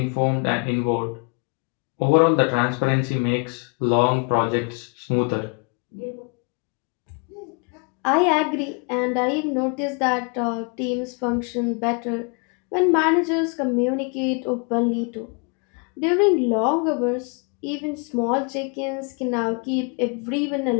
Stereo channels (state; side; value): quieter; right; 35.7 dB